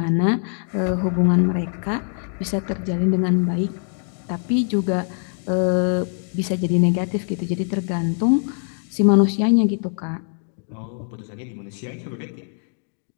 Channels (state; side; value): silent; right; 60 dB below the other